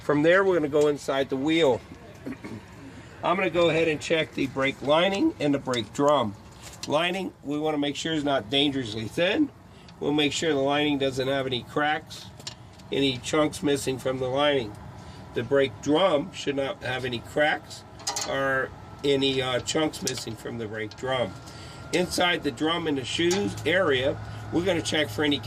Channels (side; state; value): both; identical; correlation 1.00